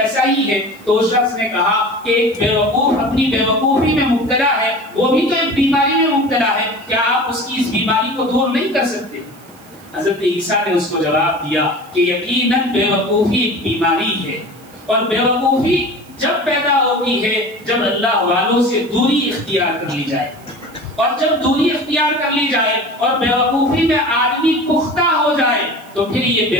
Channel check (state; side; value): noise; right; hiss, 26 dB below the sound